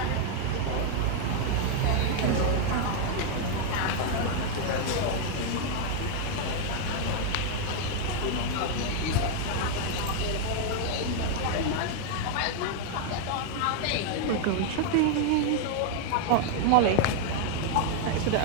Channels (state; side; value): different; both; correlation 0.00